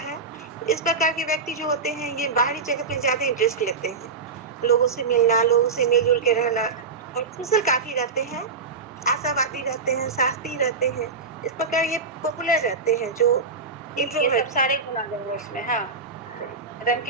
इस प्रकार के व्यक्ति जो होते हैं ये बाहरी जगत में ज्यादा इंटरेस्ट लेते हैं, लोगों से मिलना, लोगों से मिलजुल के रहना, और सोशल काफी रहते हैं, आशावादी रहते हैं, साहसी रहते हैं। इस प्रकार ये पॉपुलर रहते हैं जो ये इंट्रोवर्ट। सब सारे गुण आ जाएंगे उसमें। हाँ, एकदम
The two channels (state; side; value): quieter; left; 4.5 dB